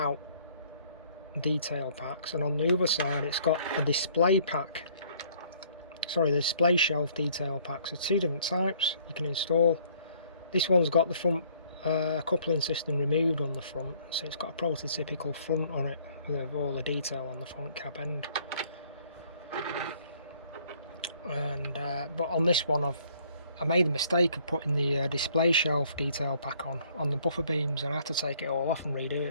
detail packs, and on the other side it's got a display pack, sorry, the display shelf detail packs. So 2 different types you can install. This one's got the front coupling system removed on the front, so it's got a prototypical front on it with all the detail on the front cab end. And but on this one I made the mistake of putting the display shelf detail pack on the buffer beams, and I had to take it all off and redo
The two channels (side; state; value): both; inverted; correlation -0.61